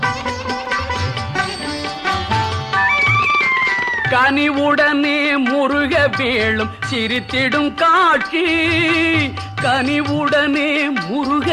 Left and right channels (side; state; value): both; identical; correlation 1.00